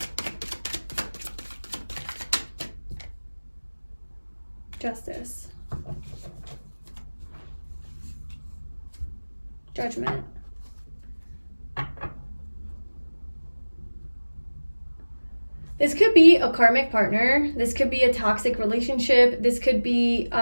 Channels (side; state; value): both; inverted; correlation -1.00